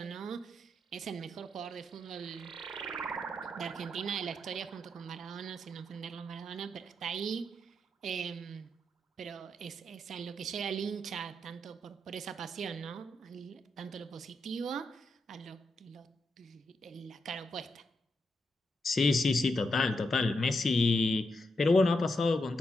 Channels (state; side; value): normal; both; correlation 0.83